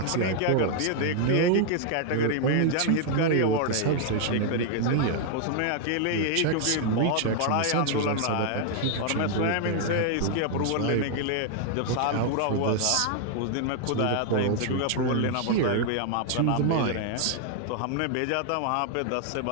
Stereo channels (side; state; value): both; different; correlation 0.00